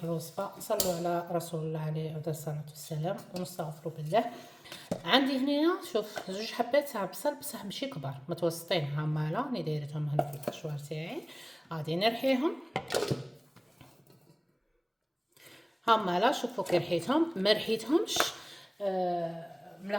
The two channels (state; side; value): identical; both; correlation 1.00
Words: الوصفه نصلوا على رسول الله عليه الصلاه والسلام ونستغفروا بالله. عندي هنا شوف زوج حبات تاع بصل، بصح ماشي كبار، متوسطين هما راني دايرتهم هنا في الكشوار تاعي. غادي نرحيهم هما لا. شوفوا كي رحيتهم ما رحيتهمش